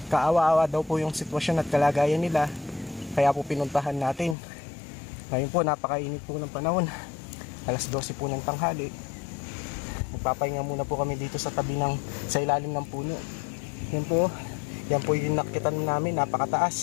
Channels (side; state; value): right; drops out; at 4.4 s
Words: kaawa-awa daw po yung sitwasyon at kalagayan nila, kaya po pinuntahan natin. Ngayon po napakainit po ng panahon, alas 12 po ng tanghali. Magpapahinga muna po kami dito sa tabi sa ilalim ng puno. Yan po yung nakitan namin,